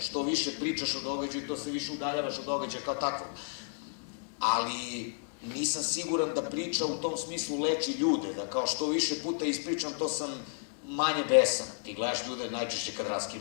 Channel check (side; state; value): right; silent; digital silence